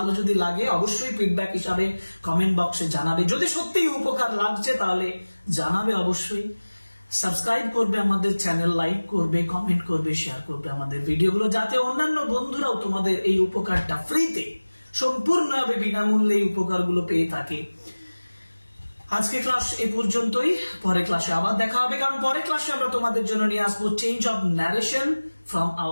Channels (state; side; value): inverted; both; correlation -1.00